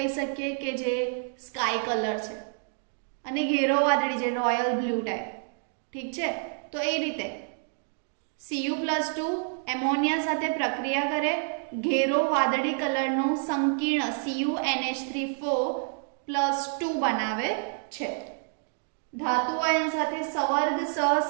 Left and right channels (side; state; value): left; silent; 59 dB below the other